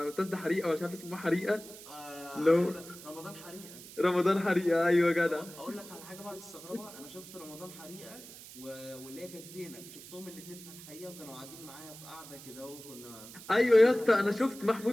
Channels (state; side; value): noise; right; hiss, 16 dB below the sound